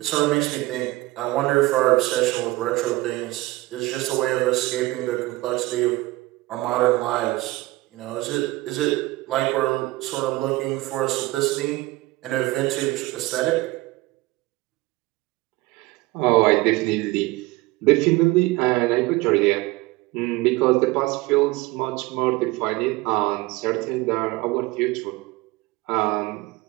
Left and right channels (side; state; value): left; quieter; 20.0 dB